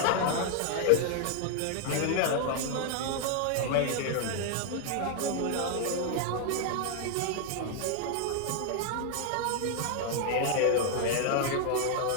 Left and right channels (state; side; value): different; both; correlation 0.00